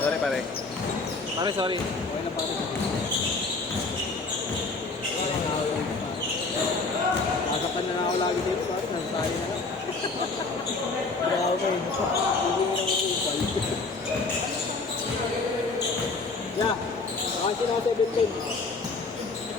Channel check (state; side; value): quieter; right; 3.8 dB